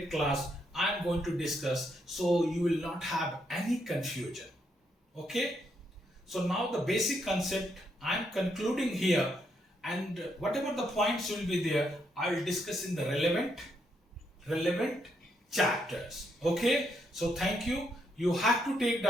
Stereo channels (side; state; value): both; normal; correlation 0.77